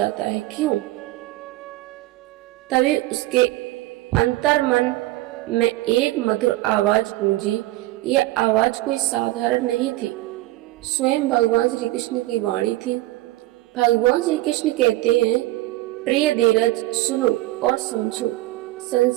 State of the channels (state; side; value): quieter; left; 17.9 dB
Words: है, क्यों? तभी उसके अंतर्मन में एक मधुर आवाज गूंजी। यह आवाज कोई साधारण नहीं थी, स्वयं भगवान श्री कृष्ण की वाणी थी। भगवान श्री कृष्ण कहते हैं, प्रिय धीरज, सुनो और समझो।